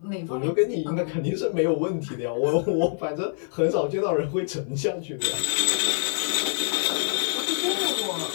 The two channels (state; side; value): silent; right; 61 dB below the other